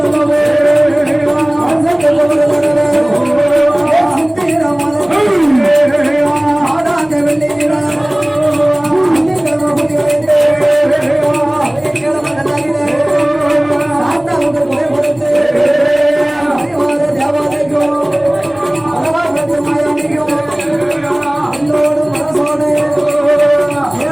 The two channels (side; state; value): left; noise; hum, 30 dB below the sound